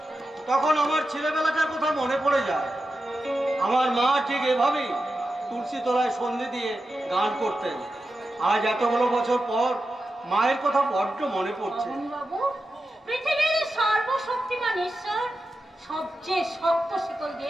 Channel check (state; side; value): normal; both; correlation 0.90